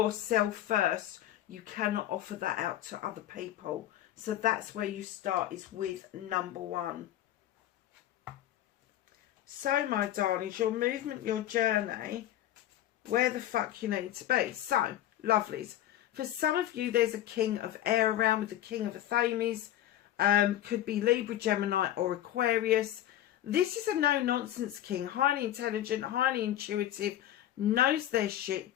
first, you cannot offer that out to other people. So that's where you start, is with number 1. So, my darlings, your movement, your journey, where the fuck you need to be. So, lovelies. For some of you, there's a king of air around with the king of Athames. Could be Libra, Gemini or Aquarius. This is a no-nonsense king. Highly intelligent, highly intuitive, knows their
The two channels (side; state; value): right; quieter; 12.7 dB